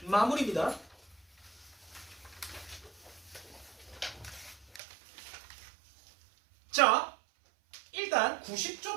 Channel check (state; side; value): drops out; left; at 4.8 s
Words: 마무리입니다. 자, 일단